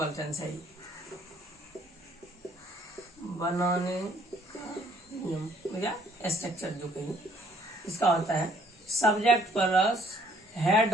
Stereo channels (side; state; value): both; normal; correlation 0.62